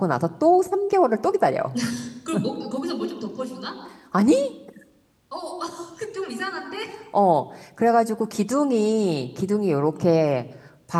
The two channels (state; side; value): identical; both; correlation 1.00